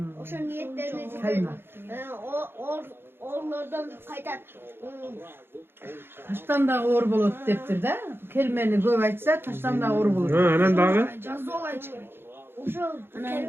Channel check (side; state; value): left; late; 0.11 ms